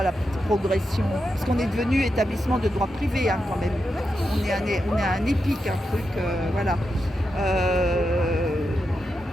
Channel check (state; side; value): normal; both; correlation 0.87